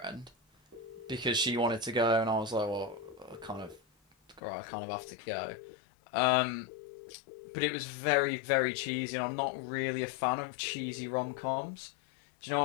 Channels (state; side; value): drops out; right; at 4.4 s